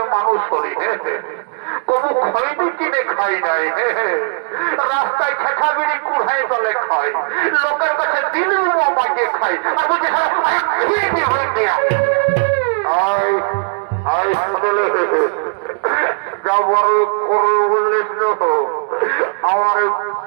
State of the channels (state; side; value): silent; left; digital silence